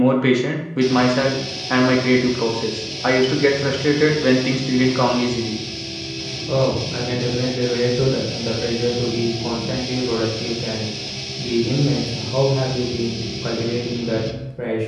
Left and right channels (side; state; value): both; identical; correlation 1.00